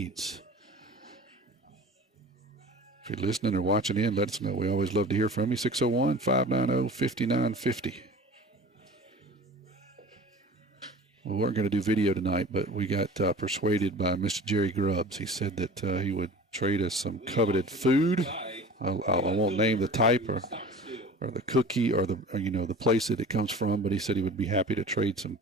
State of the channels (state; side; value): normal; both; correlation 0.40